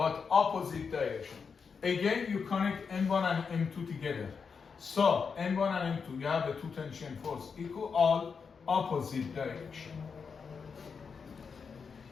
opposite direction. Again, you connect M1 and M2 together. So M1 and M2, you have a 2 tension force equal all opposite direction.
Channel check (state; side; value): quieter; right; 5.7 dB